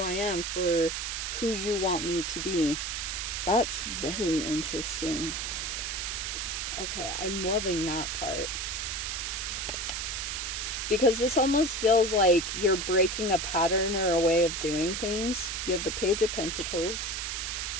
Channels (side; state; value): right; noise; hiss, 3 dB below the sound